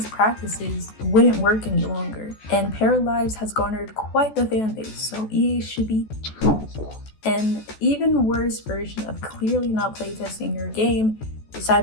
practices wouldn't work any longer. And Paralyzed has garnered quite the fan base, so EA should be an even worse version of clearly not playtesting your game is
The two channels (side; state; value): right; late; 14 ms